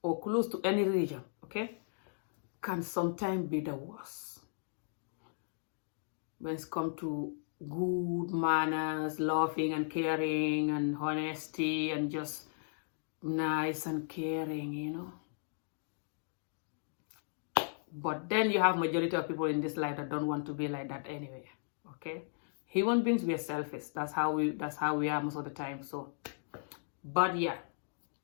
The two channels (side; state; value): right; silent; digital silence